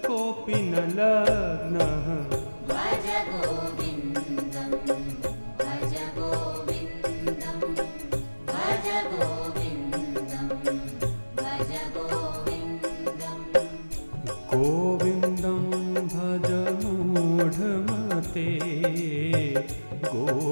कोऽपि न लग्नः भज गोविन्दं भज गोविन्दं भज गोविन्दं भज गोविन्दम् गोविन्दं भज मूढमते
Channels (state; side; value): inverted; both; correlation -1.00